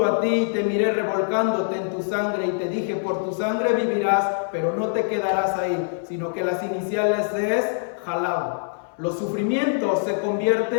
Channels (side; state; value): right; silent; digital silence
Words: a ti y te miré revolcándote en tu sangre y te dije, por tu sangre vivirás, pero no te quedarás ahí, sino que las iniciales es Halab. Los sufrimientos se